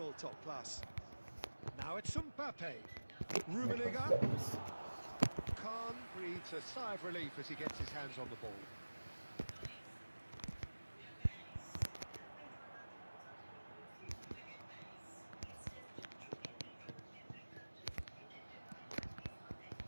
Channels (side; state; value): both; inverted; correlation -1.00